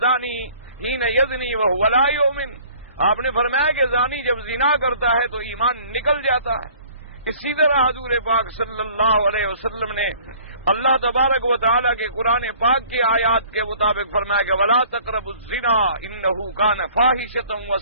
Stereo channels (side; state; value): both; inverted; correlation -0.53